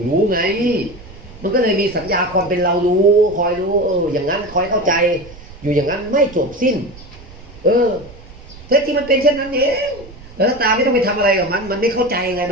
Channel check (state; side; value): noise; right; rumble, 19 dB below the sound